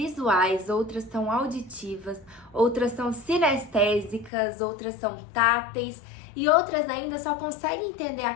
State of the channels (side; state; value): right; drops out; at 4.3 s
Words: outras são auditivas, outras são sinestésicas, outras são táteis e outras ainda só conseguem entender